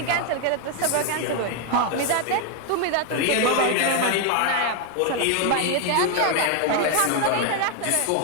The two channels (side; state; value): both; different; correlation 0.01